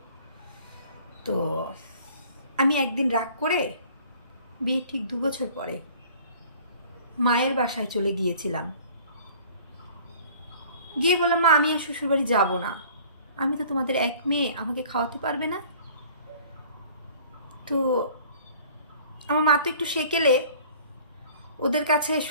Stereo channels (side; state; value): both; inverted; correlation -0.50